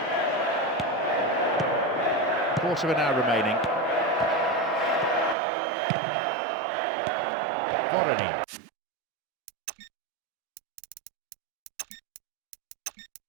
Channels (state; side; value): drops out; left; at 5.4 s